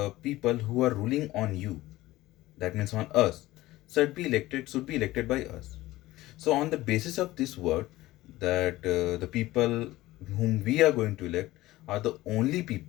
people who are ruling on you, that means on us, should be elected by us. So on the basis of this word, that the people whom we are going to elect are the only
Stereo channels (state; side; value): quieter; right; 17.4 dB